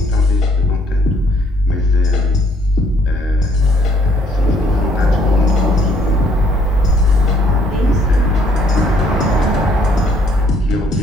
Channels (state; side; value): normal; both; correlation 0.65